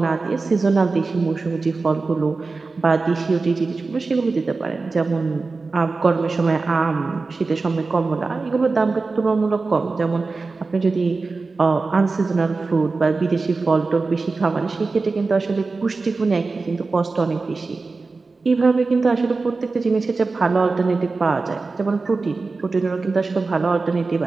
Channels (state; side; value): quieter; left; 3.9 dB